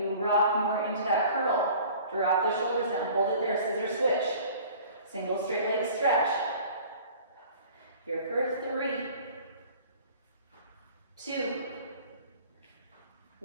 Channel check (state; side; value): inverted; both; correlation -0.47